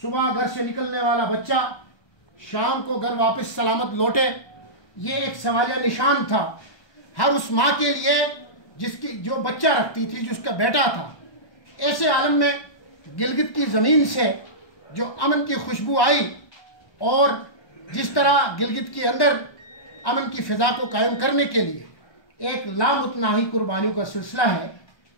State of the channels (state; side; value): late; right; 1.3 ms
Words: घर से निकलने वाला बच्चा शाम को घर वापस सलामत लौटे, ये एक सवालिया निशान था हर उस माँ के लिए जिसकी जो बच्चा रखती थी, जिसका बेटा था। ऐसे आलम में गिलगित की ज़मीन से जो अमन की खुशबू आई और जिस तरह गिलगित के अंदर अमन की फ़िज़ा को कायम करने के लिए एक लामुतनाही कुर्बानियों का सिलसिला है,